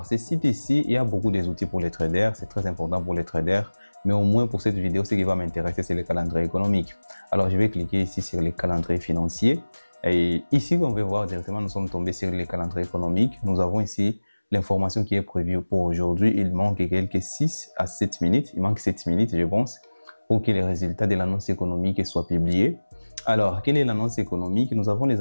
ce site ici, il y a beaucoup d'outils pour les traders, c'est très important pour les traders. Mais au moins pour cette vidéo, ce qui va m'intéresser, c'est le calendrier économique. Alors, je vais cliquer ici sur les calendriers financiers. Et ici, on va voir directement, nous sommes tombés sur les calendriers économiques. Nous avons ici l'information qui est prévue pour aujourd'hui. Il manque quelques 6 à 7 minutes. Il manque 7 minutes, je pense, pour que les résultats de l'annonce économique soient publiés. Alors, quelle est l'annonce économique? Nous avons les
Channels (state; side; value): inverted; both; correlation -1.00